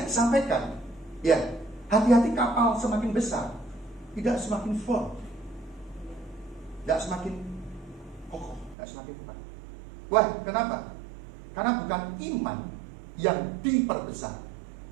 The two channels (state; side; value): drops out; left; at 8.8 s